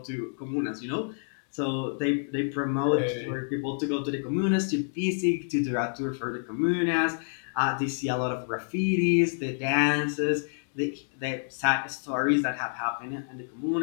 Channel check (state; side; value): silent; right; digital silence